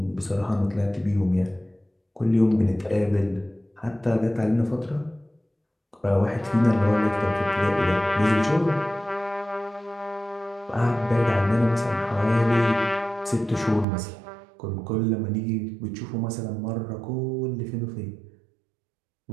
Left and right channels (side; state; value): left; drops out; at 13.9 s